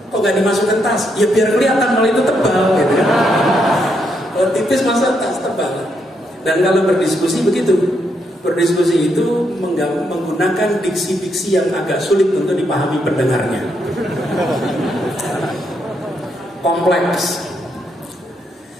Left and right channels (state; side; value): normal; both; correlation 0.78